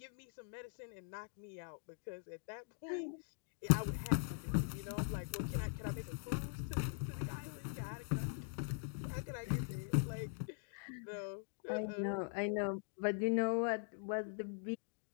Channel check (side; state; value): right; silent; digital silence